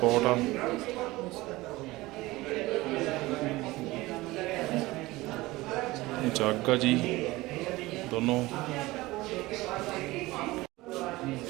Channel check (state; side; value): quieter; left; 19.7 dB